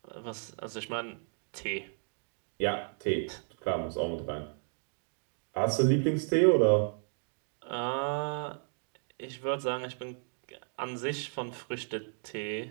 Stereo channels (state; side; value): silent; left; 55 dB below the other